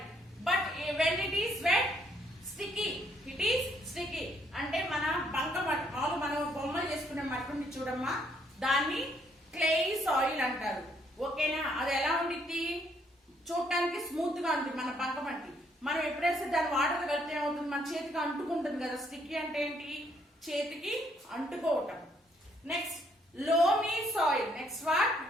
But when it is wet, sticky. It is sticky. అంటే మన బంక మట్టి, మామూలు మనం బొమ్మలు చేసుకునే మట్టి ఉంది చూడమ్మా, దాన్ని క్లే సాయిల్ అంటారు. ఓకేనా? అది ఎలా ఉండిద్ది? చూడటానికి స్మూత్ గా ఉంటుంది మన బంక మట్టి. మనం ఎప్పుడైతే దాని వాటర్ కలిపితే ఏమవుతుంది? మన చేతికి అంటుకుంటుంది కదా. స్టిక్కీ అంటే ఏంటి? చేతికి అంటుకోవటం. Next, loamy soil. Next what?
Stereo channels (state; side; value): normal; both; correlation 0.69